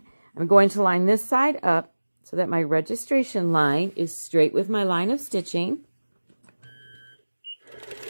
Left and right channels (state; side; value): inverted; both; correlation -1.00